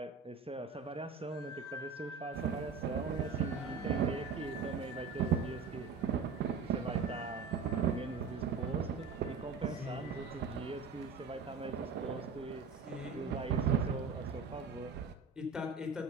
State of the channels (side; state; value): left; quieter; 5.2 dB